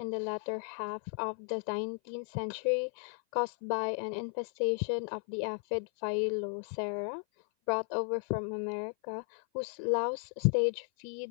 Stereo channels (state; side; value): silent; right; 55 dB below the other